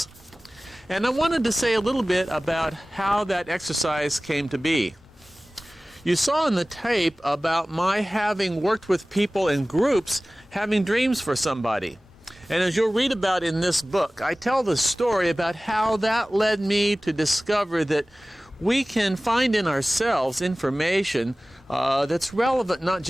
And I wanted to say a little bit about how that exercise came to be. You saw in the tape about my having worked with people in groups having dreams for somebody. And as you'll read about in this book, I tell the story about how that led me to discover that we can find in ourselves information that's relevant not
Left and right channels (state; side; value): normal; both; correlation 0.98